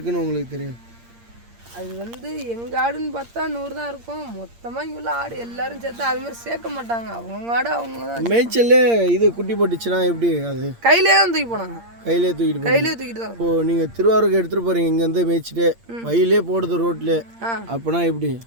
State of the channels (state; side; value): late; left; 8.6 ms